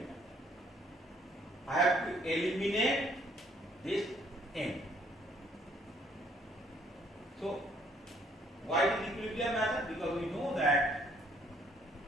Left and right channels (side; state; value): both; normal; correlation 0.65